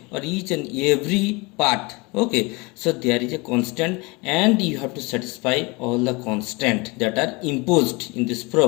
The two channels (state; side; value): quieter; right; 26.3 dB